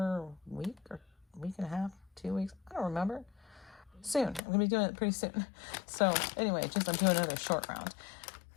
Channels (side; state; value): right; drops out; at 4.4 s